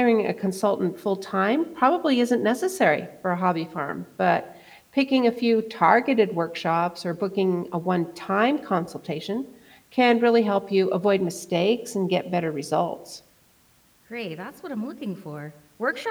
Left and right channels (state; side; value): identical; both; correlation 1.00